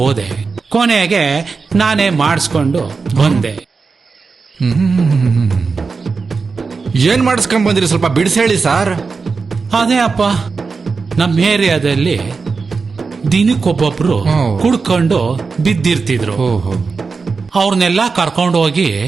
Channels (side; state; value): left; quieter; 4.7 dB